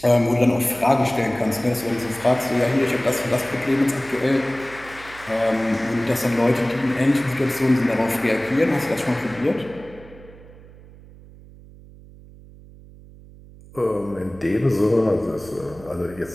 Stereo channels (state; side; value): noise; right; hum, 21 dB below the sound